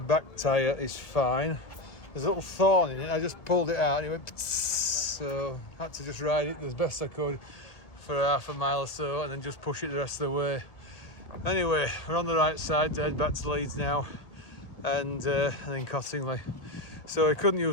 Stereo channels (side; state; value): right; late; 1.7 ms